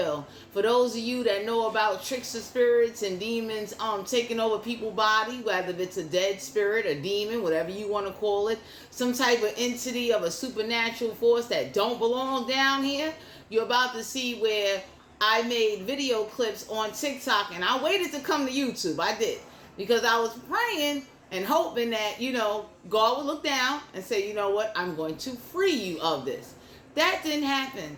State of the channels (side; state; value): both; identical; correlation 1.00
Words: For those of you that know about trickster spirits and demons taking over people's body, whether it's a dead spirit, a demon, whatever you want to call it, some type of entity of a supernatural force that don't belong down here, you're about to see where I made video clips on TikTok, and I waited to come to YouTube. I did. Because I was praying and hoping that, God would look down and say, you know what, I'm going to free you of this. That didn't happen.